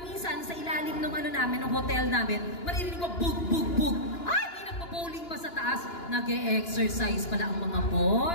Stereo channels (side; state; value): right; late; 2.9 ms